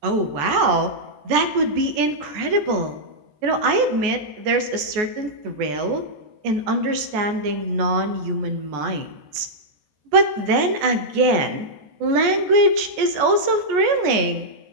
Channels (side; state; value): left; late; 14 ms